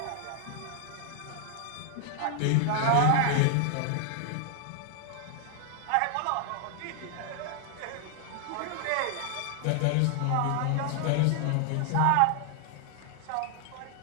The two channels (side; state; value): both; different; correlation 0.00